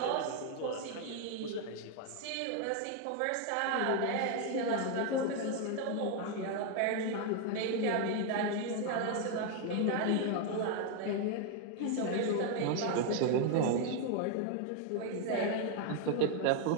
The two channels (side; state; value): both; different; correlation 0.01